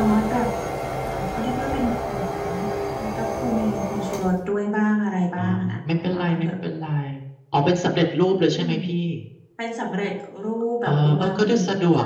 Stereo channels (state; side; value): identical; both; correlation 1.00